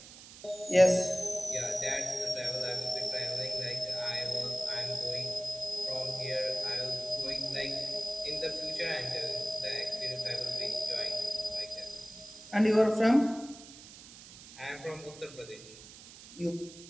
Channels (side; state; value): right; noise; hiss, 17 dB below the sound